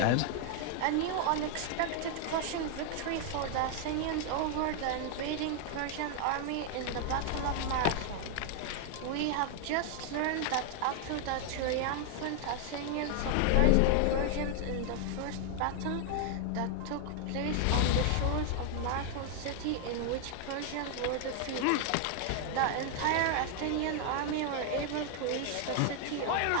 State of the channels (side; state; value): both; different; correlation 0.00